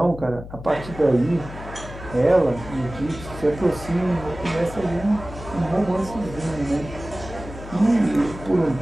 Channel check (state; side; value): noise; left; hum, 13 dB below the sound